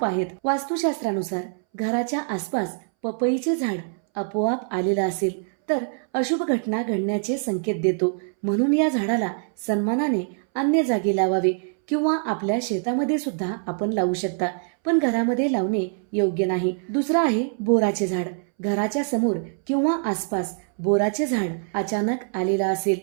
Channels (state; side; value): silent; left; 62 dB below the other